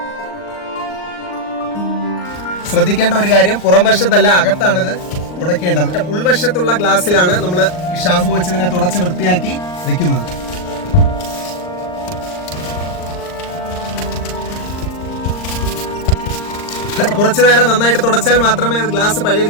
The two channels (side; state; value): right; late; 39 ms